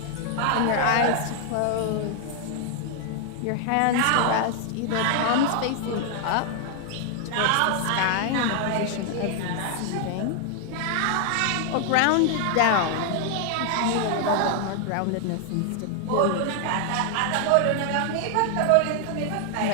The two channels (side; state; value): both; different; correlation 0.00